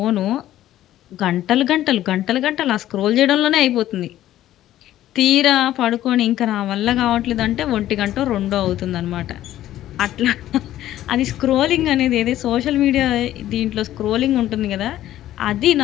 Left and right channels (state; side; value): quieter; right; 13.3 dB